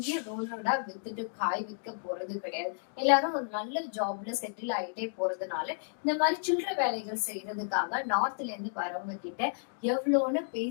ரோடோட வித்துட்டு காய் விற்க போறது கிடையாது. எல்லாரும் ஒரு நல்ல ஜாப்ல செட்டில் ஆயிட்டே போறதுனால இந்த மாதிரி சில்லற வேலைகள் செய்யறதுக்காக நார்த்ல இருந்து வரவங்க கிட்ட எவ்வளவுன்னு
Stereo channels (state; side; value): silent; right; digital silence